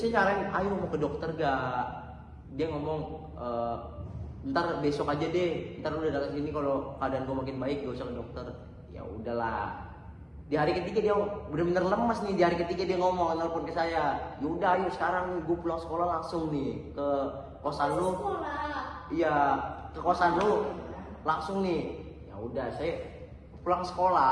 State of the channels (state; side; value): identical; both; correlation 1.00